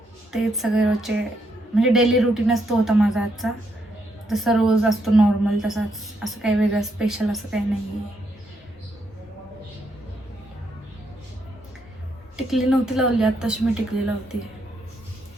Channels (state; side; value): normal; both; correlation 0.77